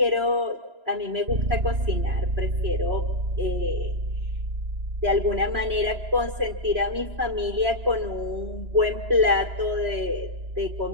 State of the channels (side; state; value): left; late; 3.0 ms